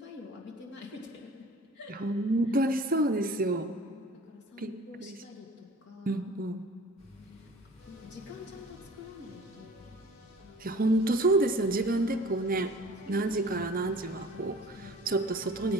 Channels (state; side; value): normal; both; correlation 0.46